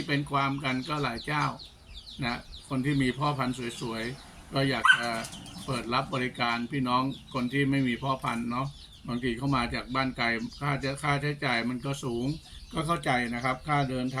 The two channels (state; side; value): identical; both; correlation 1.00